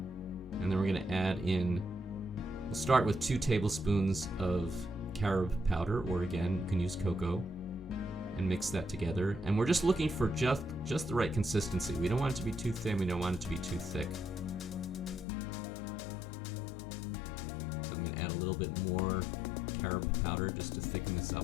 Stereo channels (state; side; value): drops out; right; at 15.2 s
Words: And then we're going to add in, we'll start with 2 tablespoons of carob powder, or again, you can use cocoa, and mix that together. And we're just looking for just the right consistency. We don't want it to be too thin, we don't want it to be too thick. So I'm going to add a little bit more carob powder just to thicken this